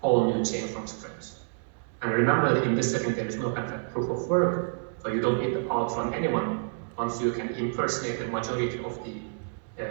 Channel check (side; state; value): left; silent; 59 dB below the other